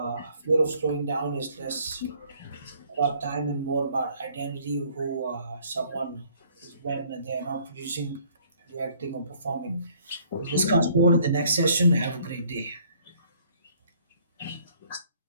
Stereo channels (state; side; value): inverted; both; correlation -0.61